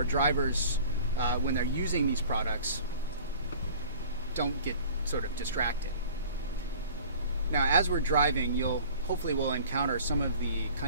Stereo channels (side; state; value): both; inverted; correlation -0.45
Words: drivers, when they're using these products, don't get sort of distracted. Now, as we're driving, hopefully we'll encounter some of the